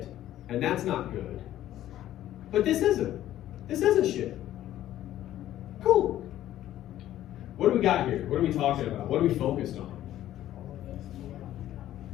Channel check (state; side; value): quieter; right; 13.0 dB